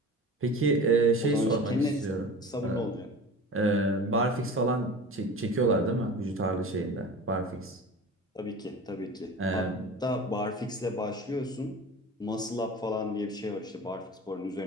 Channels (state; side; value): normal; both; correlation 0.36